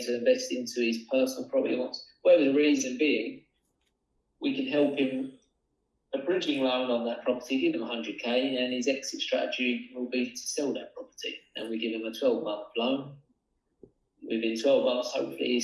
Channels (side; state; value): both; identical; correlation 1.00